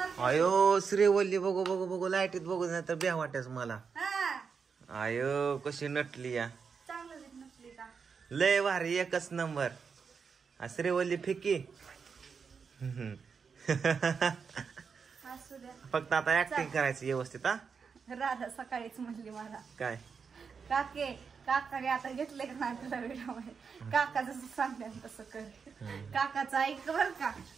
अयो श्रीवल्ली बघू बघू बघू लाईटीत बघू नाही तर ब्या वाटायच मला. अयो कशी नटली या. लय भारी एकच नंबर. श्रीवल्ली फिकी. फक्त आता ऍक्टिंग करायची व्यवस्थित. राधा सकाळीच म्हणली मला काय काकाने आता घेतले का नाही तुला व्हिडिओ. काका जसं सांगते तसं कर. काकाचं ऐक बर का.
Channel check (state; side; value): quieter; left; 5.8 dB